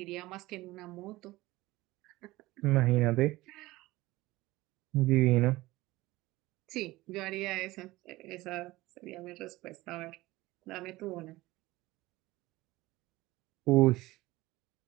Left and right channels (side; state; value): left; quieter; 19.0 dB